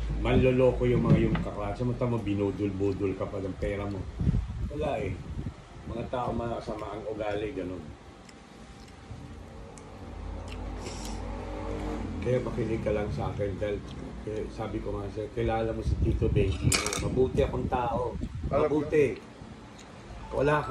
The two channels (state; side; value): identical; both; correlation 1.00